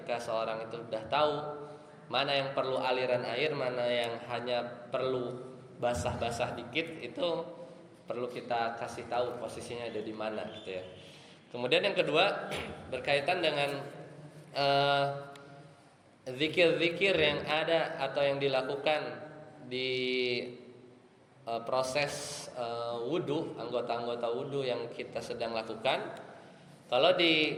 seorang itu sudah tahu mana yang perlu aliran air, mana yang hanya perlu basah-basah dikit, itu perlu kita kasih tahu posisinya ada di mana gitu ya. Kemudian yang kedua berkaitan dengan zikir-zikir yang ada atau yang dilakukan di proses wudu, anggota-anggota wudu yang kita sedang lakukan. Kalau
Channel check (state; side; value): identical; both; correlation 1.00